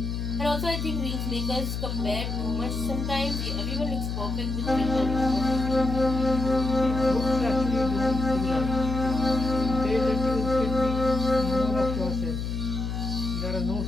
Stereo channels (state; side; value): noise; left; hum, 3 dB below the sound